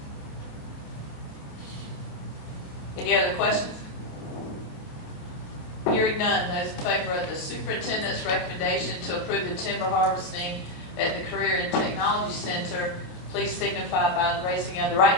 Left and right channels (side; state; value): right; late; 28 ms